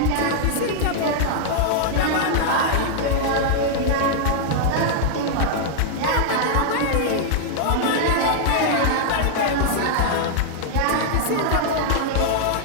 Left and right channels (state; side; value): different; both; correlation -0.01